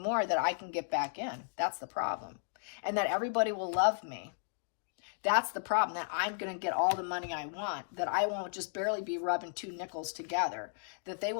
that I can get back in. That's the problem. And that everybody will love me. That's the problem, that I'm going to get all the money I want, that I won't just barely be rubbing two nickels together, that they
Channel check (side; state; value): right; silent; digital silence